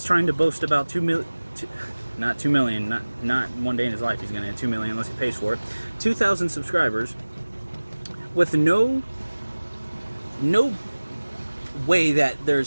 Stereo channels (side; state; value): both; inverted; correlation -1.00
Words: trying to boast about 2 million... Not 2 million, not one day in his life he's gonna get 2 million unless he pays for it. 2,000 subscribers with no way that